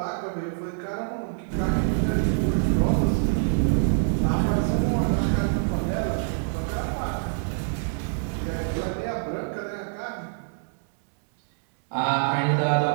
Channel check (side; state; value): left; silent; digital silence